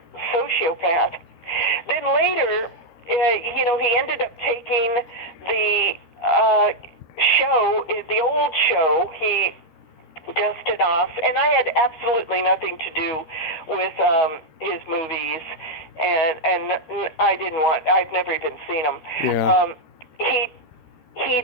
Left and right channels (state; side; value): late; right; 13 ms